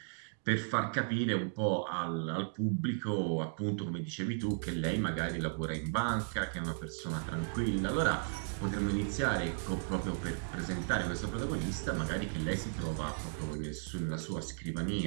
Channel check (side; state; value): left; silent; digital silence